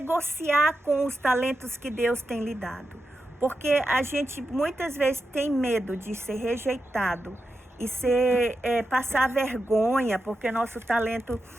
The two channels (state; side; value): normal; both; correlation 0.88